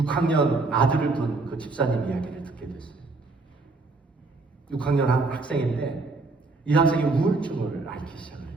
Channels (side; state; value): left; quieter; 3.6 dB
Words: 아들을 둔 그 집사님 이야기를 듣게 됐어요. 6학년 한 학생인데 이 학생이 우울증을 앓기 시작을